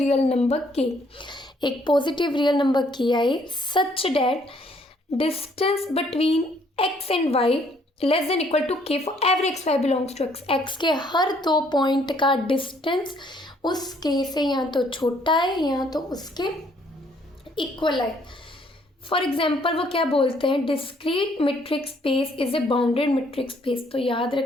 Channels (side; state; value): both; normal; correlation 0.65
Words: नंबर के, एक पॉजिटिव रियल नंबर के आए such that distance between x and y less than equal to k for every x y belongs to x. X के हर 2 पॉइंट का डिस्टेंस उस के से या तो छोटा है या तो उसके इक्वल है। फॉर एग्जाम्पल वो क्या बोलते हैं, discrete metric space is a bounded metric space. तो याद